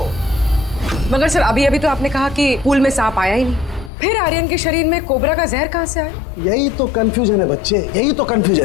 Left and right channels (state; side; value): drops out; right; at 3.9 s